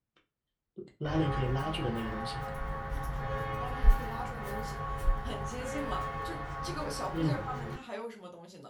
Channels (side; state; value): both; identical; correlation 1.00